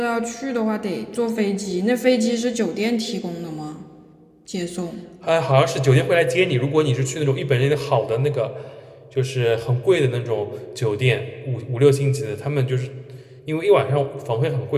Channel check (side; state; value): both; identical; correlation 1.00